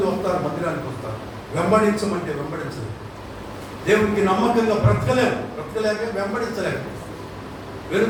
వస్తారు, మందిరానికి వస్తారు, వెంబడించమంటే వెంబడించలేదు. దేవునికి నమ్మకంగా బ్రతకలేక వెంబడించలేక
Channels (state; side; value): identical; both; correlation 1.00